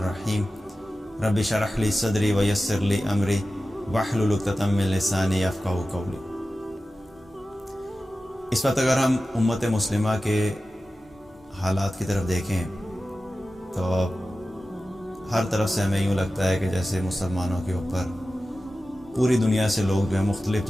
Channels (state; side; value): normal; both; correlation 0.94